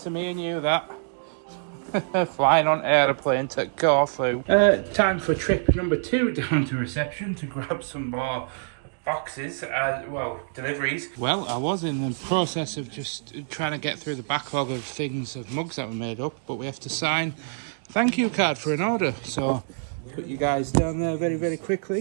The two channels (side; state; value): left; silent; digital silence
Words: of me and you, that. Flying on aeroplane to Corfu. Time for trip number 2 down to reception to grab some more boxes, deliveries. Well, I was in the process of just trying to get through the backlog of things, of mugs that were made up, but we have to sign thank you card for an order, so put you guys down there very, very